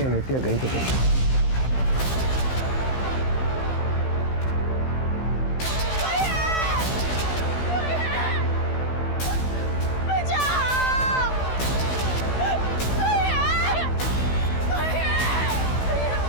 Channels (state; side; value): late; right; 16 ms